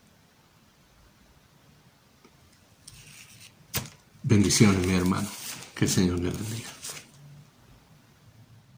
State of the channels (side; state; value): both; identical; correlation 1.00